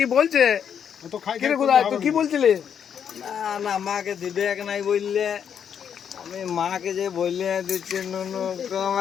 বলছে। অত খাই কি রে করলে গুদায়, হবে তুই কি না। বলছিলি? না না, মাকে দিবে এক নাই বললে। আমি মাকে যে বললে দিচ্ছি নুনু,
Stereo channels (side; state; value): right; quieter; 8.1 dB